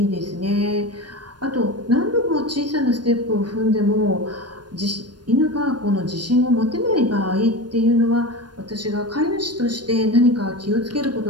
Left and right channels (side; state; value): left; late; 0.70 ms